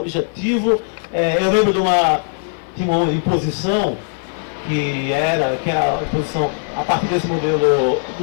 Eu lembro tinha uma imposição que era a imposição a partir desse modelo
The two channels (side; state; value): right; silent; 60 dB below the other